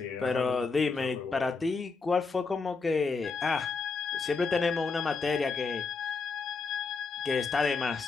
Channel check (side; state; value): right; quieter; 4.5 dB